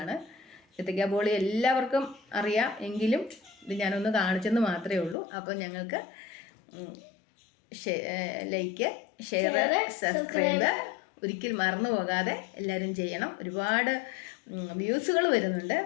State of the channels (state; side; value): drops out; right; at 5.2 s